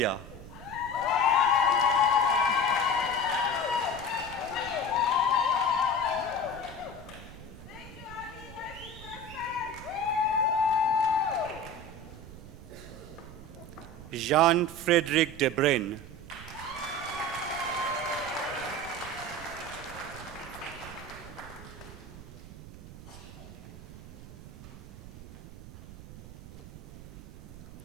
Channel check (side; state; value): right; noise; rumble, 15 dB below the sound